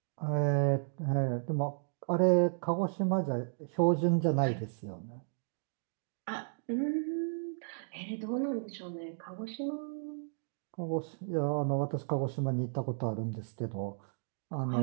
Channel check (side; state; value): left; silent; digital silence